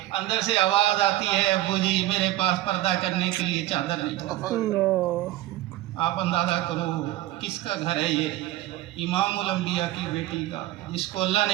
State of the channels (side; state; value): left; quieter; 15.8 dB